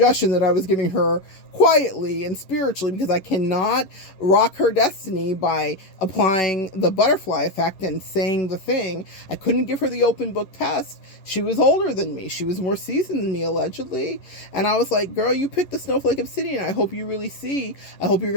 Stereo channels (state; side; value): late; right; 11 ms